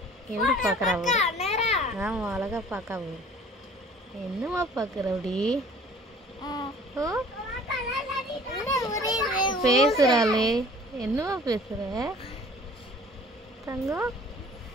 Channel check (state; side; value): normal; both; correlation 0.50